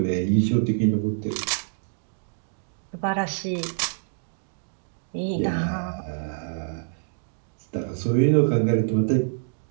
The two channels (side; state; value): left; silent; digital silence